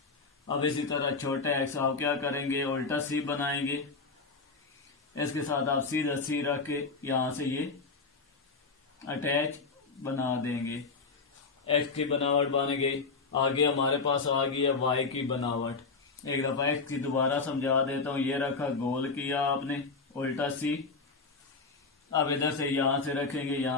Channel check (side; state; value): right; quieter; 4.3 dB